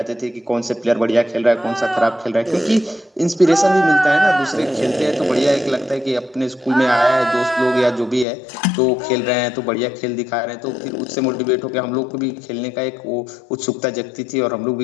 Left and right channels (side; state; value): right; drops out; at 8.2 s